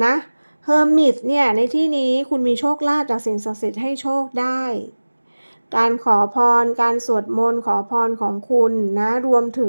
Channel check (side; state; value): both; inverted; correlation -1.00